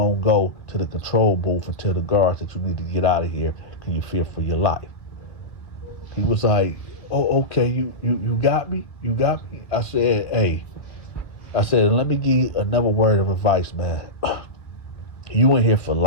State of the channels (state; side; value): late; right; 2.0 ms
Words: to go to the control booth and tell the guards that you need to get out of here because you fear for your life. He was like, oh, okay, you got me? You got me? I said, hey. I said, let me give you another word of advice, man. You in here for